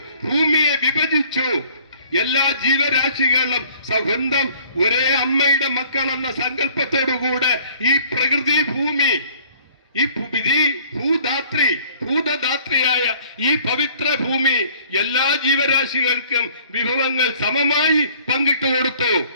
ഭൂമിയെ വിഭജിച്ചു. എല്ലാ ജീവരാശികളും സ്വന്തം ഒരേ അമ്മയുടെ മക്കളെന്ന സങ്കല്പത്തോടുകൂടെ ഈ പ്രകൃതി ഭൂമി, ഈ ഭൂതദാത്രിയായ ഈ പവിത്ര ഭൂമി എല്ലാ ജീവരാശികൾക്കും വിഭവങ്ങൾ സമമായി പങ്കിട്ടു കൊടുത്തു.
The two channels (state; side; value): inverted; both; correlation -0.55